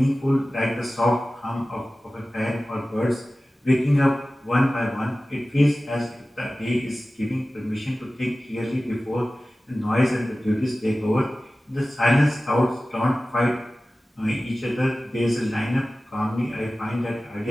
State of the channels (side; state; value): both; normal; correlation 0.96